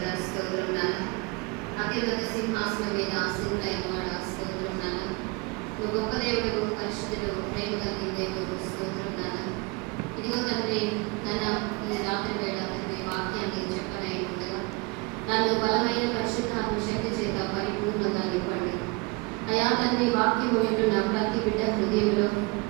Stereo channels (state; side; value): quieter; left; 27.6 dB